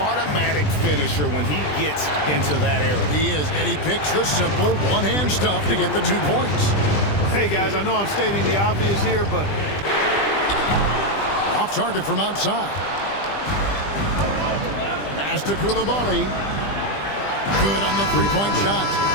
finisher when he gets into that area. He is, and he picks the simple one-hand stuff to get the 2 points. Hey, guys, I know I'm stating the obvious here, but off target from outside. Pass to Coulibaly. Good on the three-point shot.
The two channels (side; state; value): right; late; 20 ms